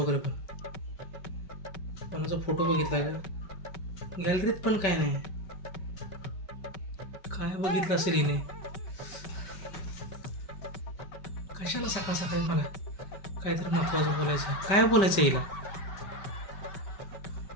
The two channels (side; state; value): right; late; 5.1 ms